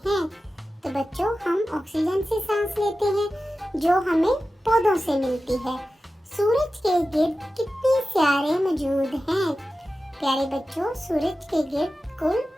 तो बच्चों, हम ऑक्सीजन से सांस लेते हैं जो हमें पौधों से मिलती है। सूरज के गिर्द कितने सितारे मौजूद हैं? प्यारे बच्चों, सूरज के गिर्द कुल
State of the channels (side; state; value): both; normal; correlation 0.94